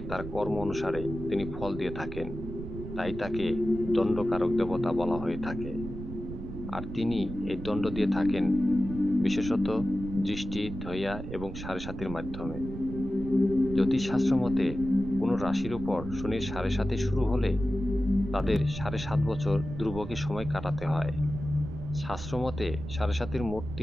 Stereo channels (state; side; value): noise; right; rumble, 9 dB below the sound